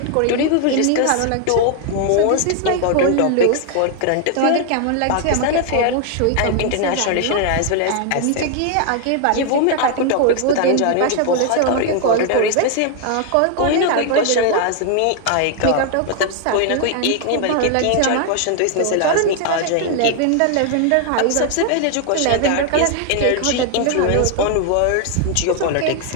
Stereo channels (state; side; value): different; both; correlation 0.00